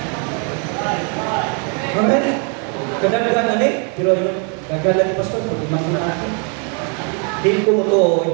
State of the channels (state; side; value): quieter; left; 38.7 dB